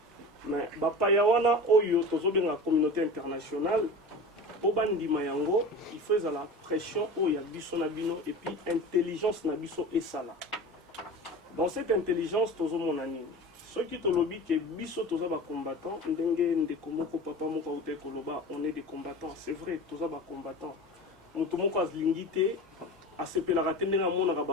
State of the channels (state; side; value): normal; both; correlation 0.33